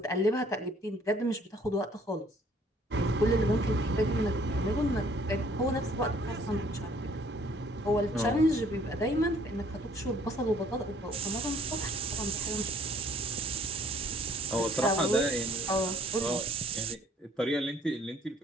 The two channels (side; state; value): both; normal; correlation 0.60